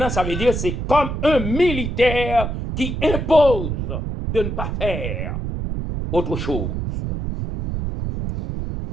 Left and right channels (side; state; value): right; noise; rumble, 3 dB below the sound